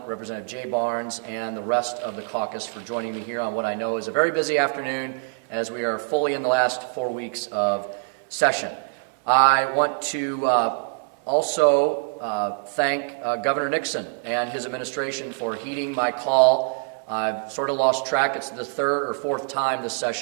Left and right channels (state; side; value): silent; left; 60 dB below the other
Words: Representative Jay Barnes, and the rest of the caucus for joining me here on what I know is a very busy afternoon as we are fully in the last 4 weeks of session. I want to also thank Governor Nixon and his administration for heeding my call. I've sort of lost track. It's the third or fourth time this